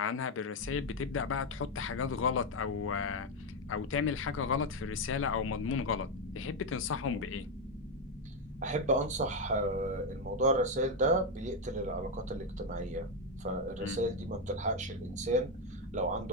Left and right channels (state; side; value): normal; both; correlation 0.06